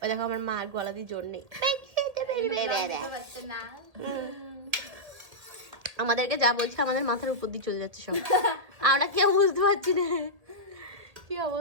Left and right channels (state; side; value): late; left; 1.8 ms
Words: ওই দেখো আমার মা গলা দিয়ে জোর নেই, আমাদেরকে যা বলছে আমাদের মাথার উপর দিয়ে চলে যাচ্ছে সব, আমরা কেউ বুঝতে পারছি না কি